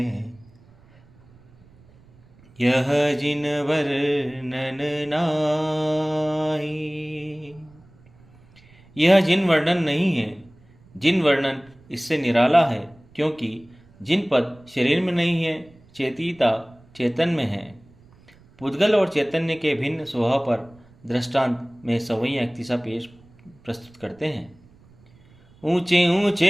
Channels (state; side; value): noise; right; rumble, 28 dB below the sound